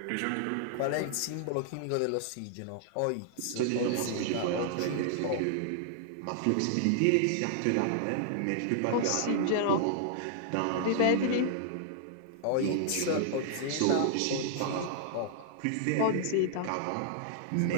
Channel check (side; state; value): both; different; correlation -0.01